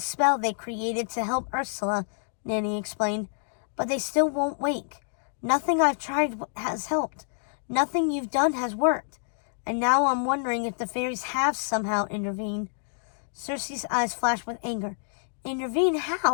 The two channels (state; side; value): silent; right; digital silence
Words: they created to help Ursula, Nanny explained. But they still won't wake. Nothing I've tried has helped. Nothing you've done has worked. And now I'm wondering if the fairies have somehow intervened. Cersei's eyes flashed with anger. Intervene